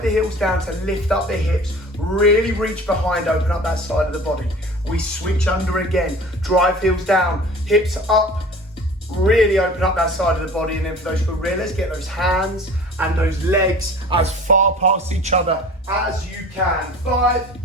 heels down to lift up the hips. Really reach behind, open up that side of the body. We switch under again. Drive heels down, hips up. Really open up that side of the body. And then for those gorillas, get those hands and those legs as far past each other as you can. 5,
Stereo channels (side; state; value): both; normal; correlation 0.43